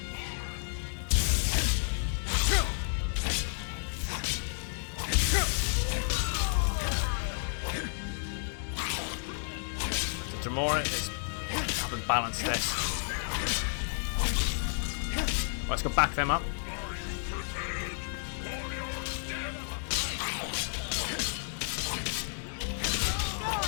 The Dremora is haven't balanced this. Let's go back them up.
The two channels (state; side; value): silent; right; digital silence